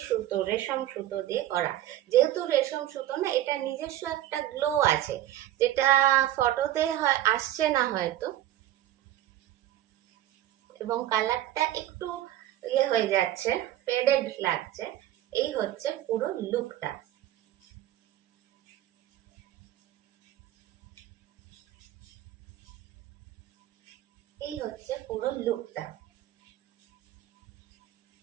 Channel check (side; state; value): left; quieter; 13.2 dB